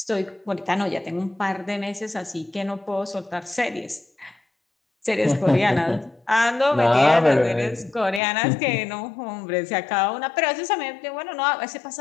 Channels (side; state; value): right; drops out; at 8.2 s